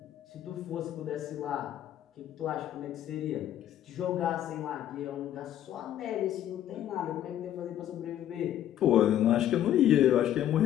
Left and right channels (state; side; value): quieter; right; 11.5 dB